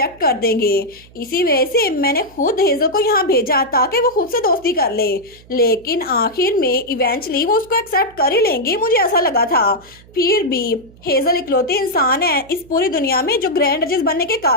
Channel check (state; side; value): noise; right; hum, 25 dB below the sound